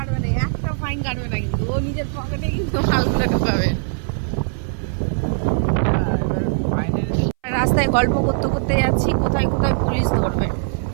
না, একটা ফাইন কাটবে না, কিন্তু ও নিজের পকেটে কিন্তু মালগুলো ঢোকাবে। রাস্তায় গল্প করতে করতে যাচ্ছি, কোথায় কোথায় পুলিশ ধরবে,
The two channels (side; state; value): left; silent; 61 dB below the other